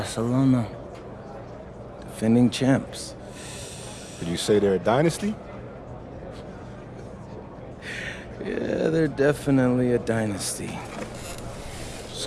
Defending champs. Did you say they're a dynasty? Yeah, they're definitely a dynasty.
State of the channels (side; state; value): both; identical; correlation 1.00